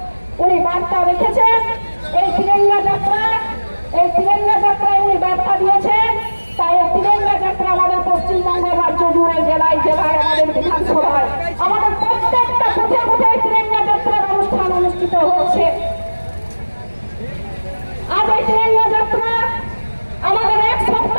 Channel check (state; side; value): inverted; both; correlation -1.00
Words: উনি বার্তা রেখেছেন এই তিরঙ্গা যাত্রায় উনি বার্তা দিয়েছেন। তাই এই তিরঙ্গা যাত্রা আমাদের পশ্চিমবঙ্গ রাজ্য জুড়ে, জেলায় জেলায়, আমাদের বিধানসভায়, আমাদের প্রত্যেকটা কোথায় কোথায় তিরঙ্গা যাত্রার অনুষ্ঠান অনুষ্ঠিত হচ্ছে। আজ এই তিরঙ্গা যাত্রা আমাদের এক